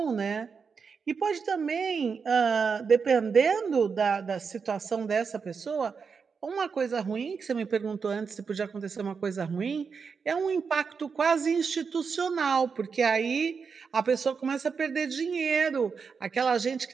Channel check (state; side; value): quieter; left; 5.7 dB